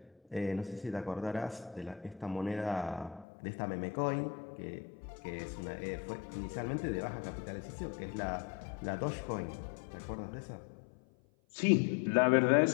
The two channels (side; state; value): right; drops out; at 3.2 s